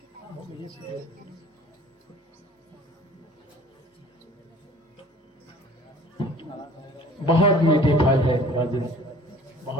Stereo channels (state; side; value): normal; both; correlation 0.49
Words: बहुत मीठे फल है राजन,